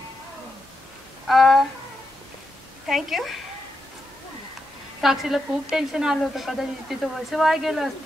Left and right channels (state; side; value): normal; both; correlation 0.85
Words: थँक्यू. साक्षीला खूप टेन्शन आलं होतं, कदाचित तिचं वर्ष वाया गेलं